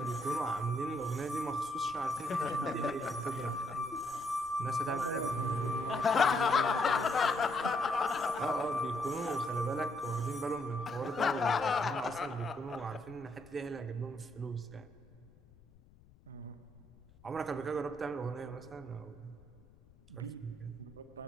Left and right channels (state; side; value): noise; left; rumble, 25 dB below the sound